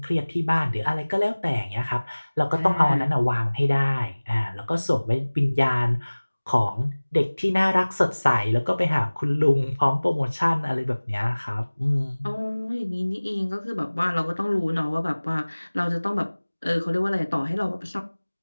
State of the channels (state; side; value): inverted; both; correlation -1.00